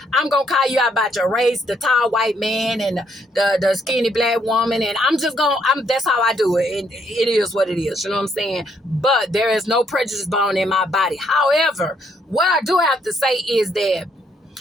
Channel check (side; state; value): both; normal; correlation 0.71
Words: I'm going to call you out about your race, the tall white man and the skinny black woman. And that's how I do it. And it is what it is. You know what I'm saying? But there is no prejudice bone in my body. However, what I do have to say is that